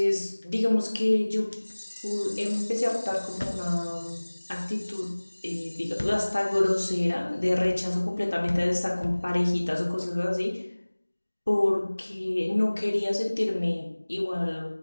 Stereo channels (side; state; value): both; inverted; correlation -1.00